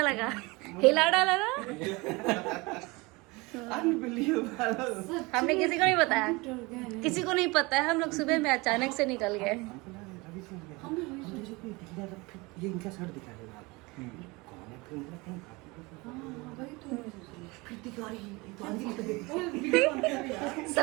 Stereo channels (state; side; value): quieter; left; 24.7 dB